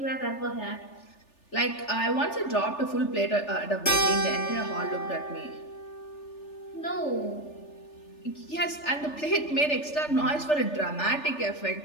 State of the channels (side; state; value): right; late; 3.4 ms